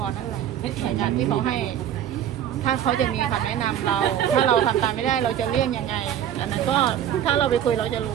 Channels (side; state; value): left; quieter; 10.3 dB